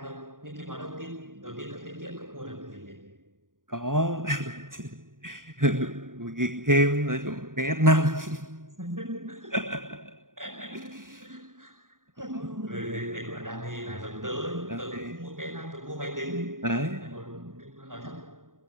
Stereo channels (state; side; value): late; left; 0.89 ms